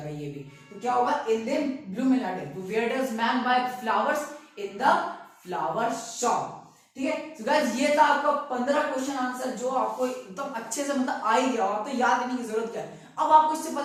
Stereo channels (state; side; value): identical; both; correlation 1.00